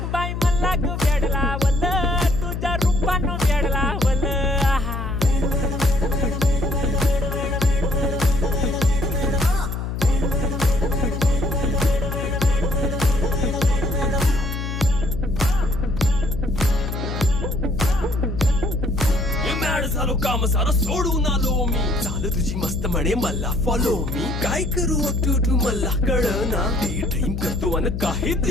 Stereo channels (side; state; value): left; noise; hum, 4 dB below the sound